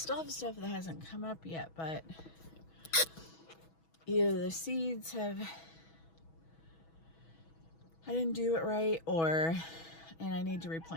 have stuff that hasn't come up yet, but either the seeds have, I didn't do it right, and I need to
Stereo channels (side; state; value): right; late; 6.2 ms